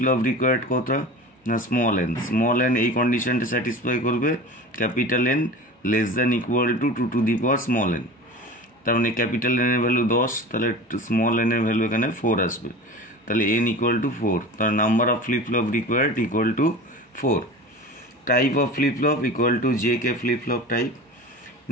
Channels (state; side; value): normal; both; correlation 0.35